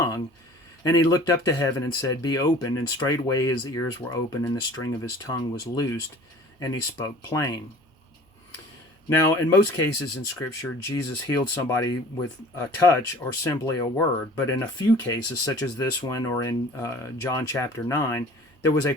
And he looked up to heaven and said, Be opened. And straightway his ears were opened, and the string of his tongue was loosed, and he spoke plain. Now, in most cases in Scripture, Jesus healed somebody with a touch or simply a word. But in a few cases, such as this one or in John chapter 9, there was a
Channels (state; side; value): normal; both; correlation 0.47